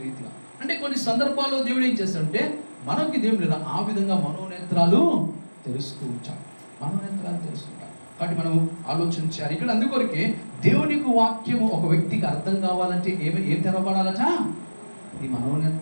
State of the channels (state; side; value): inverted; both; correlation -1.00